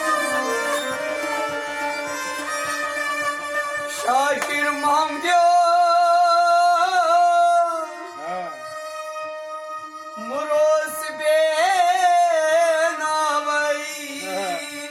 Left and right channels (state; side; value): identical; both; correlation 1.00